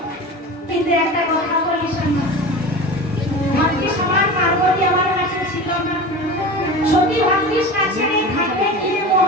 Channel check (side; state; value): both; normal; correlation 0.31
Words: কিন্তু একটা কথা বলি শোনো, ভাগ্যিস আমার পার্বতী আমার কাছে ছিল না। সতী ভাগ্যিস কাছে নেই, থাকলে কি